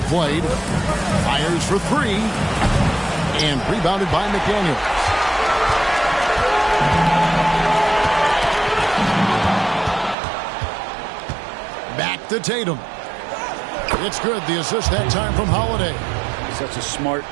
played. Fires for 3. and rebounded by McDaniels. Back to Tatum. It's good. The assist that time from Holiday. Such a smart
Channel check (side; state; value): left; drops out; at 10.2 s